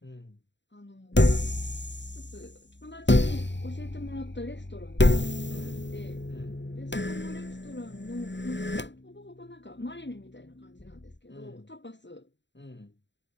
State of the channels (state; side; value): late; right; 0.52 ms